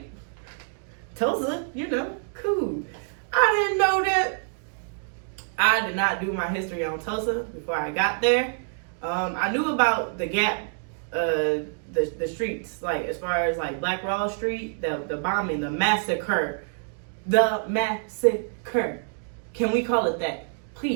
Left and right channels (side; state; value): left; silent; digital silence